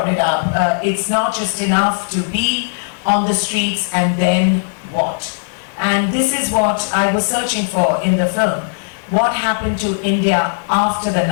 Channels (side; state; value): right; silent; digital silence